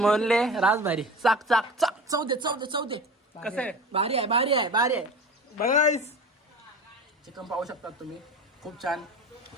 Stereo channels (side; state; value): both; normal; correlation 0.34